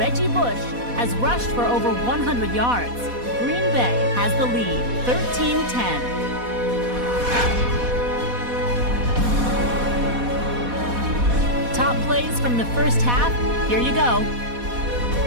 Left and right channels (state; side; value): late; left; 4.1 ms